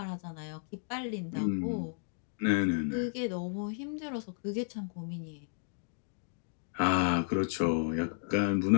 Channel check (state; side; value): silent; right; digital silence